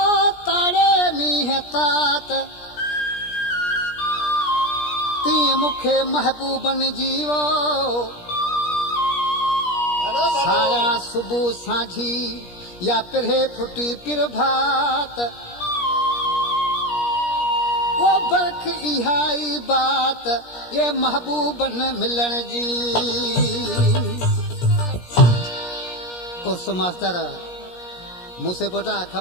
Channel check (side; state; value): right; late; 17 ms